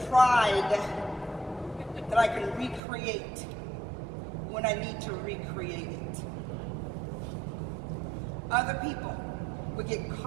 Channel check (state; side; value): drops out; left; at 2.8 s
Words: pride that I can recreate when I need to recreate it. Other people would get